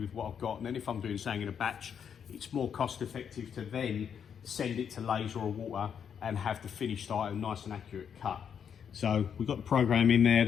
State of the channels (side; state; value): right; quieter; 7.7 dB